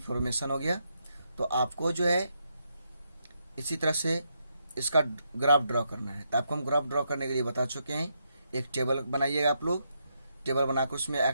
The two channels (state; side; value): inverted; both; correlation -0.80